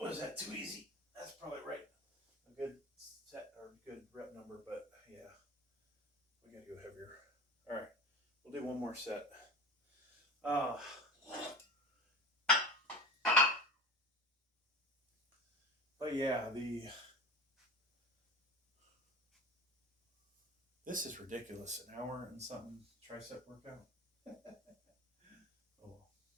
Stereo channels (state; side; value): normal; both; correlation 0.32